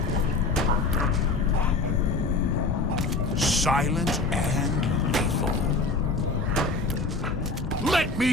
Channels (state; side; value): quieter; right; 3.6 dB